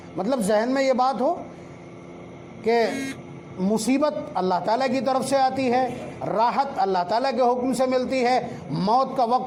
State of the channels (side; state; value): both; identical; correlation 1.00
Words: مطلب ذہن میں یہ بات ہو کہ مصیبت اللہ تعالیٰ کی طرف سے آتی ہے، راحت اللہ تعالیٰ کے حکم سے ملتی ہے، موت کا